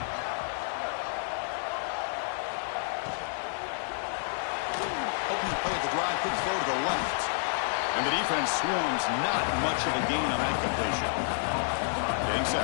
Quick throw to the left. And the defense swarms, not much of a gain on that completion. Getting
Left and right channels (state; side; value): silent; right; digital silence